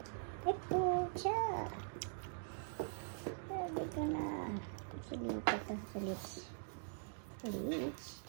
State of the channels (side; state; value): left; silent; digital silence